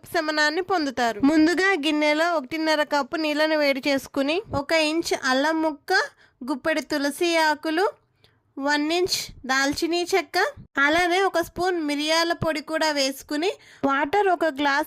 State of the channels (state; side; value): identical; both; correlation 1.00